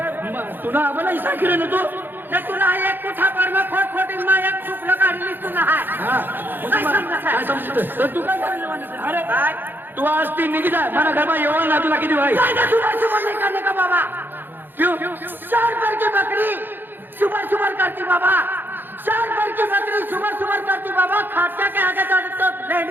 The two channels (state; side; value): late; left; 0.095 ms